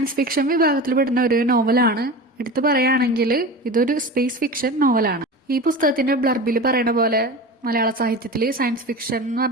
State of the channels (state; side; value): normal; both; correlation 0.31